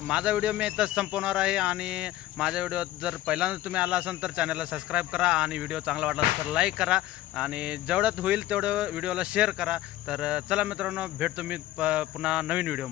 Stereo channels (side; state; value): right; quieter; 15.0 dB